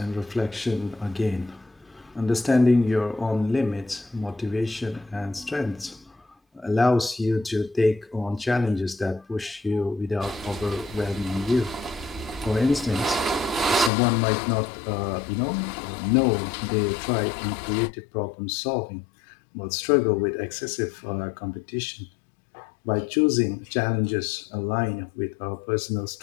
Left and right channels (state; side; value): drops out; right; at 13.9 s